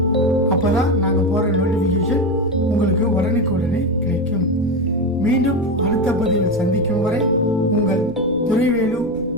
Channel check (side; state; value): left; noise; rumble, 20 dB below the sound